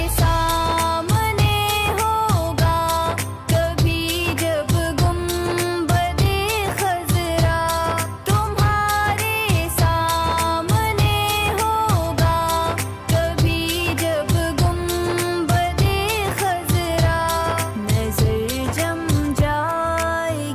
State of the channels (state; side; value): identical; both; correlation 1.00